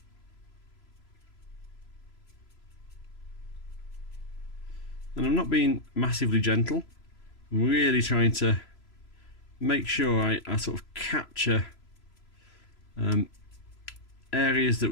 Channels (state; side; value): late; right; 3.0 ms